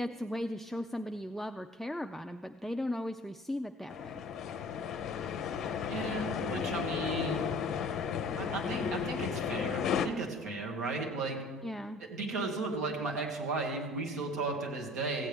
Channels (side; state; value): both; normal; correlation 0.47